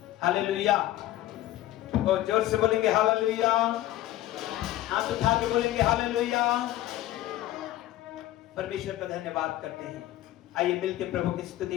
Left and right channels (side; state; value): right; quieter; 14.7 dB